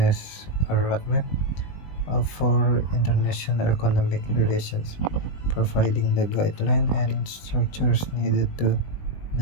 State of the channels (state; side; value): late; right; 20 ms